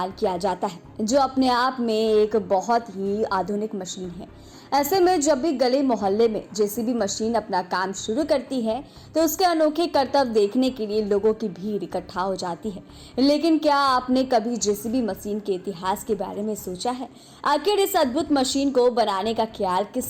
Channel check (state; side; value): identical; both; correlation 1.00